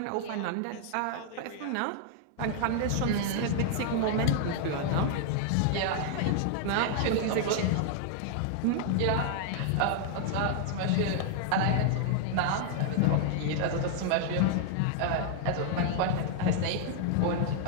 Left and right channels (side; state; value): both; different; correlation -0.01